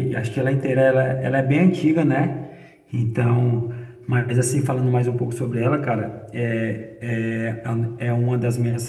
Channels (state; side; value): identical; both; correlation 1.00